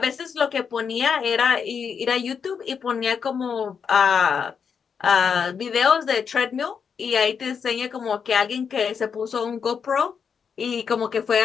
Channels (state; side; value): quieter; right; 6.6 dB